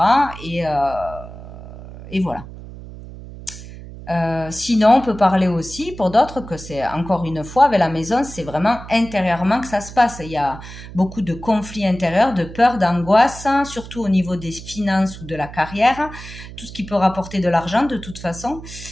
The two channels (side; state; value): right; noise; hum, 14 dB below the sound